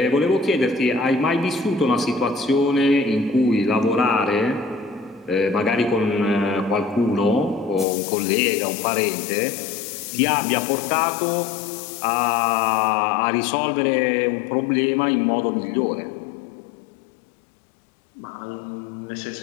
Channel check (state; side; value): drops out; right; at 7.9 s